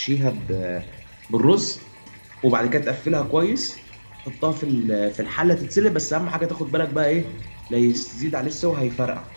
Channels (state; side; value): inverted; both; correlation -1.00